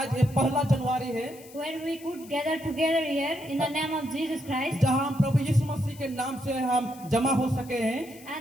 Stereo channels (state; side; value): noise; left; hiss, 21 dB below the sound